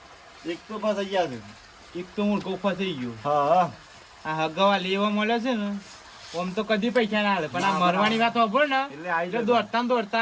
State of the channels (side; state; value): both; identical; correlation 1.00